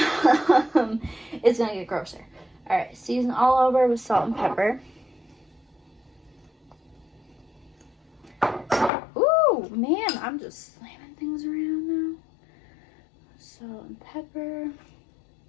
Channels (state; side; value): drops out; right; at 8.9 s